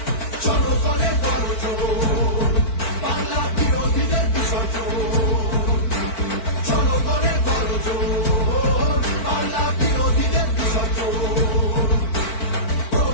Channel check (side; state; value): right; late; 4.5 ms